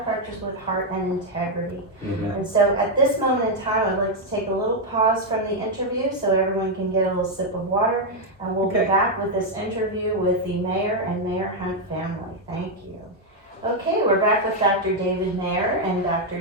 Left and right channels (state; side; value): normal; both; correlation 0.01